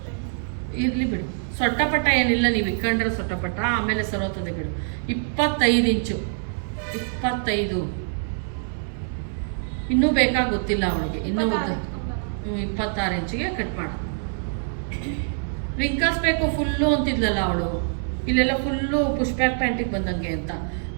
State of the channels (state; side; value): silent; left; 58 dB below the other